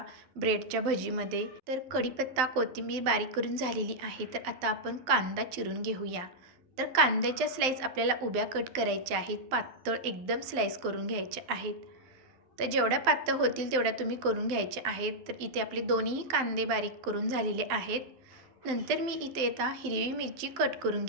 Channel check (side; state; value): left; late; 12 ms